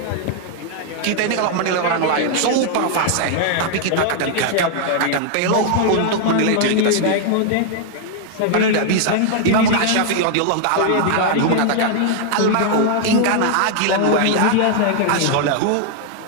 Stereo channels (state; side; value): different; both; correlation 0.00